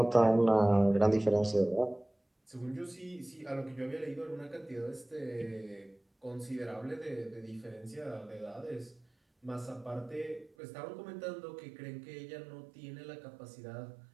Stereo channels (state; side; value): drops out; left; at 10.5 s